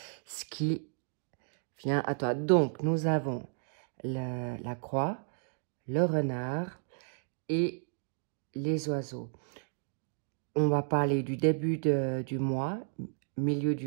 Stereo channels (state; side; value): silent; left; digital silence